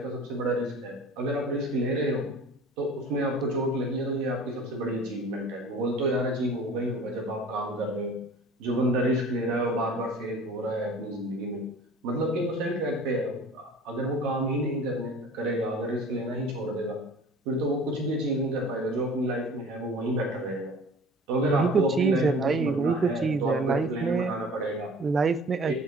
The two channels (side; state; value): both; normal; correlation 0.44